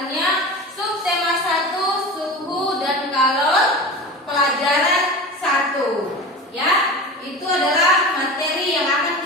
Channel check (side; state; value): both; normal; correlation 0.31